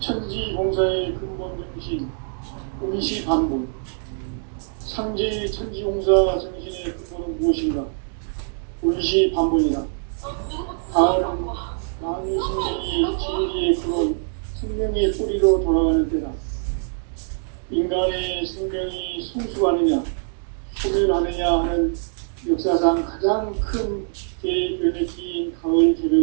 근본 정신 운시반복. 상제의 천지공사 정신의 근본은 무엇인가? 운시반복이다. 가을은 만유 생명이 진리의 근원, 생명의 뿌리로 돌아가는 때다. 인간의 생명이 성숙하느냐, 소멸하느냐 하는 역사상 가장 큰 대변혁기인 가을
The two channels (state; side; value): silent; left; 63 dB below the other